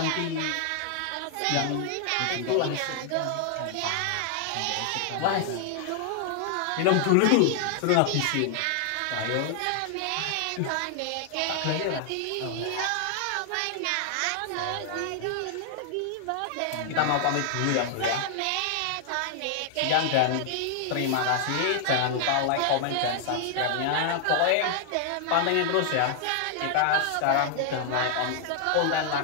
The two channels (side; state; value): both; different; correlation 0.00